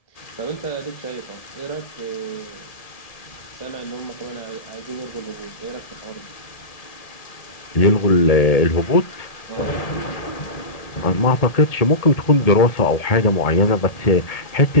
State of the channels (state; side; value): late; right; 1.8 ms